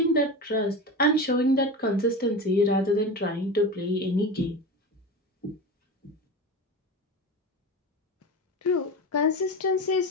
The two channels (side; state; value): both; normal; correlation 0.26